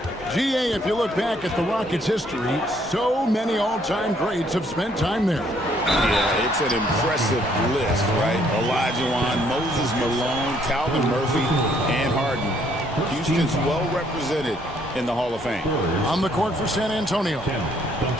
GA, if you look back at the Rockets' history, so many all-time greats have spent time there. Yeah, it's an impressive list, right? Olajuwon, Moses Malone, Calvin Murphy, and Harden. Houston's well represented in the Hall of Fame. On the court for San Antonio.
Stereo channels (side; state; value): both; normal; correlation 0.66